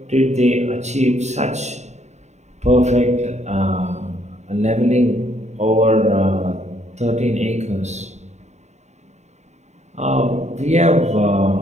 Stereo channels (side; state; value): left; late; 0.33 ms